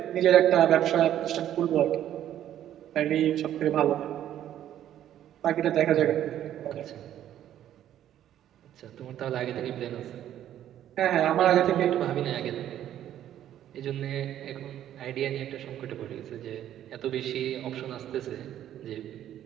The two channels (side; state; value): left; quieter; 11.4 dB